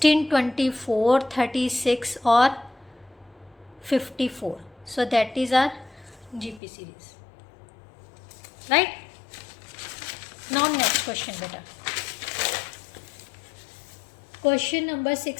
24, 36 और 54, so that is our GP series, right? Now next question बेटा, क्वेश्चन नंबर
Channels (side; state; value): right; drops out; at 6.6 s